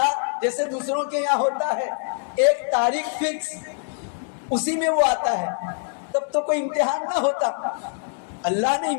جیسے دوسروں کے یہاں ہوتا ہے، ایک تاریخ فکس، اسی میں وہ آتا ہے، تو تب تو کوئی امتحان نہ ہوتا. اللہ نے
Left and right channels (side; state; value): right; silent; 63 dB below the other